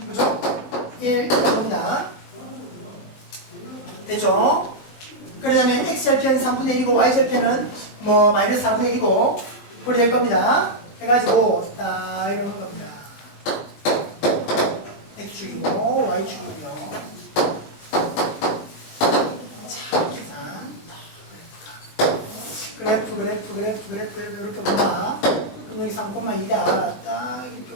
그죠? 1 갑니다. 됐죠? 그러면 x절편 3분의 1이고 y절편은 뭐 마이너스 4분의 1이고 그렇게 될 겁니다. 해가지고 딱 이런 겁니다. x축이고 y축이고요. 자, 계산. 그래프 이렇게 본다. 그럼 여기 3,2다. 딱 이렇게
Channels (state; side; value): late; right; 20 ms